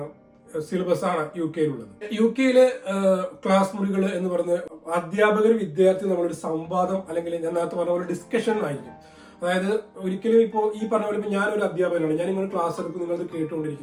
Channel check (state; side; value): identical; both; correlation 1.00